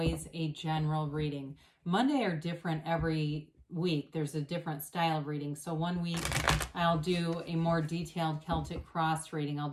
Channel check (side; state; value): both; identical; correlation 1.00